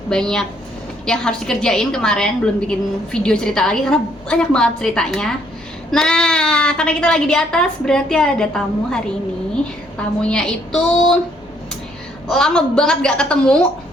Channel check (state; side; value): normal; both; correlation 0.67